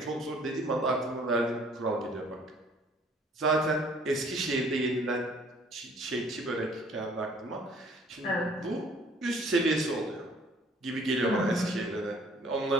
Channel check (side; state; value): both; normal; correlation 0.57